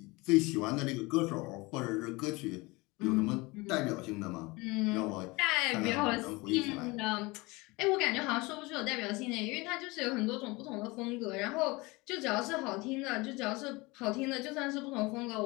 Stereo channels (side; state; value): right; quieter; 23.9 dB